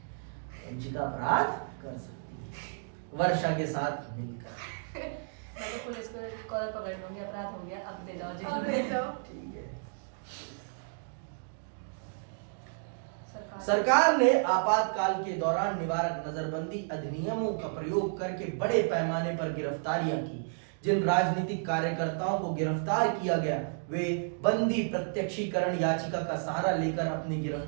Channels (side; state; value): left; silent; digital silence